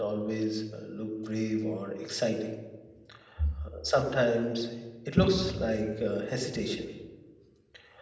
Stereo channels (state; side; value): identical; both; correlation 1.00